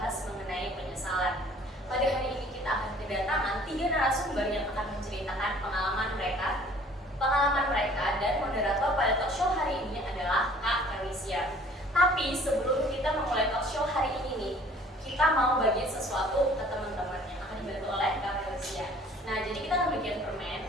mengenai penyesalan. Pada hari ini kita akan kedatangan 3 narasumber yang akan menceritakan pengalaman mereka dan moderator pada talk show hari ini adalah Kak Felicia. Tapi sebelum kita memulai talk show hari ini nih, kita mau bagiin sesuatu ke teman-teman yang akan dibantu oleh Kak Felicia. Nah, jadi kita akan bagian permen.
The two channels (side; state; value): both; normal; correlation 0.53